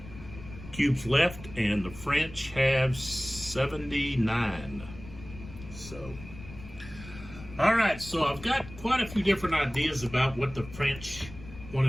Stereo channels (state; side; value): noise; left; rumble, 15 dB below the sound